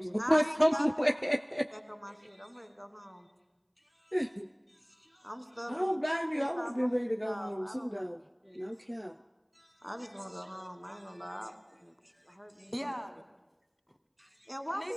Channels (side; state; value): both; identical; correlation 1.00